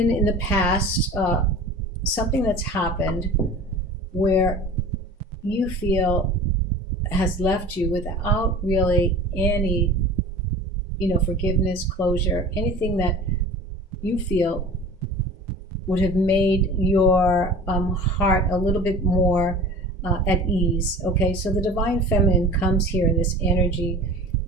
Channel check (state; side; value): normal; both; correlation 0.39